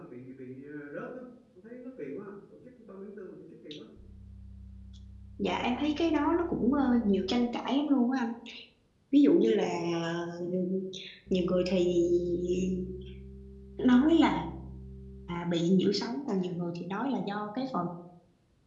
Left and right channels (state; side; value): identical; both; correlation 1.00